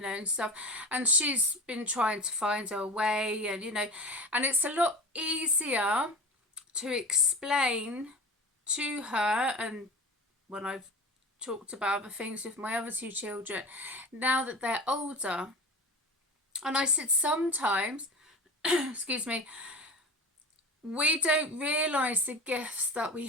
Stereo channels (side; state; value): both; normal; correlation 0.31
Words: know, and stuff, and she's been trying to find her way, and you know, and it's a lot easier to explain to her, and when I've talked about other things with my other two children now that they're older. And I said sometimes excuse me, we don't realise the gifts that we